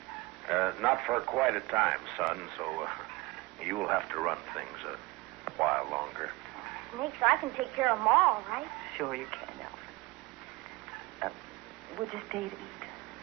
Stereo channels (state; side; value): quieter; left; 22.5 dB